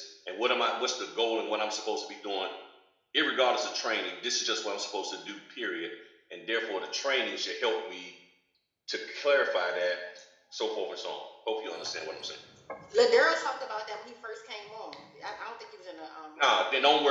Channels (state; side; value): identical; both; correlation 1.00